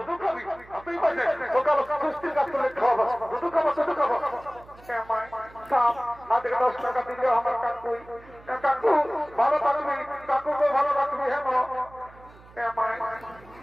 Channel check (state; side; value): noise; right; hum, 23 dB below the sound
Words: খাবি আপনি বলছে সকাল সুস্থির কাজ করে খাবো দুধু খাবো হাতে 10 টাকা দিলে আমার কাকু ভালো থাকবি কাকুকে ভালো রাখবি হ্যাঁ